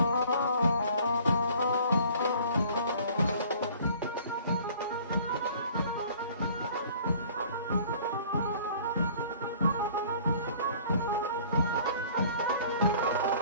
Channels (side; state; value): both; inverted; correlation -0.52